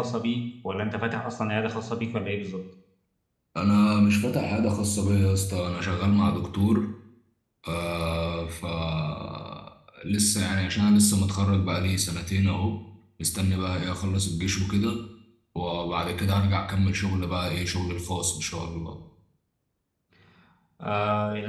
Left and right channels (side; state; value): both; identical; correlation 1.00